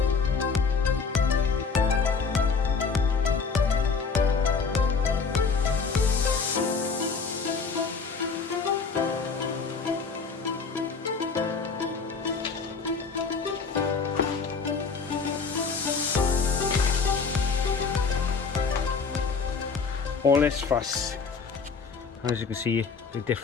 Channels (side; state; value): right; quieter; 5.1 dB